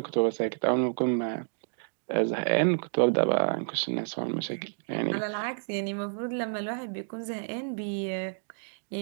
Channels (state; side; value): silent; left; digital silence